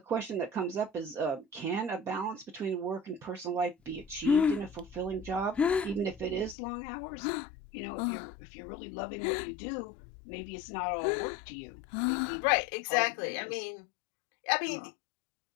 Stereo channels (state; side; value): drops out; right; at 6.6 s